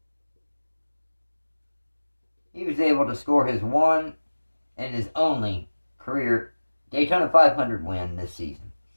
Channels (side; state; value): both; inverted; correlation -1.00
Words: to score his one and his only career Daytona 500 win this season.